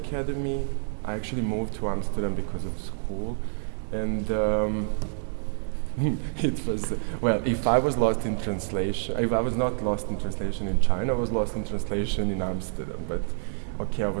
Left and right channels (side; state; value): left; silent; 55 dB below the other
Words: I actually moved to Amsterdam because of school, and it was, well, if I was lost in translation, if I was not lost in translation in China, I was lost in translation in Amsterdam. But okay, I